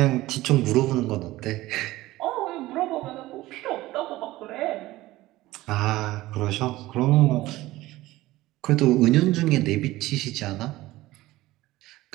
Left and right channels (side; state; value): left; quieter; 17.5 dB